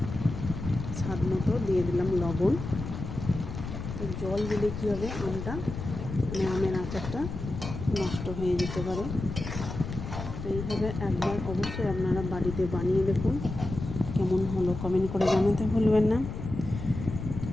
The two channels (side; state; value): left; noise; rumble, 7 dB below the sound